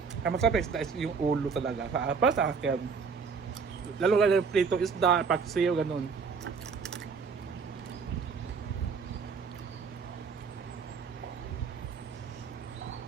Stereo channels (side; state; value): left; quieter; 5.5 dB